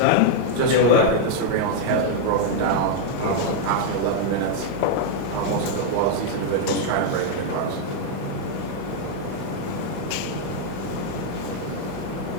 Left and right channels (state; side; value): different; both; correlation 0.00